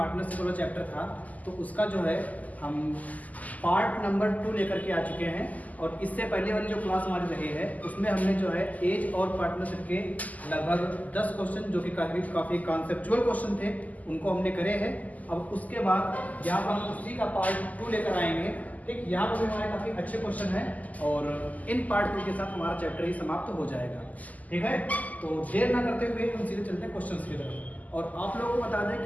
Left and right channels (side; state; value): right; late; 0.077 ms